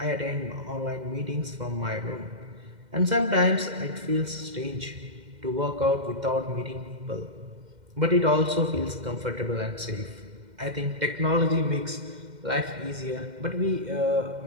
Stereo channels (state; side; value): late; left; 2.1 ms